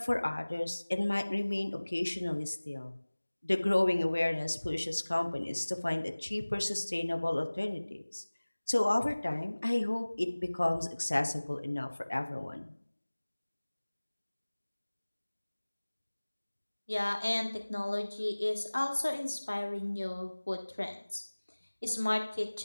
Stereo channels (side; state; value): both; inverted; correlation -1.00